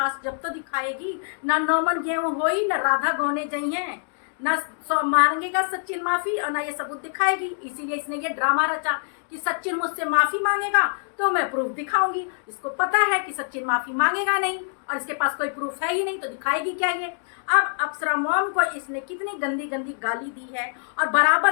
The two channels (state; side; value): silent; right; digital silence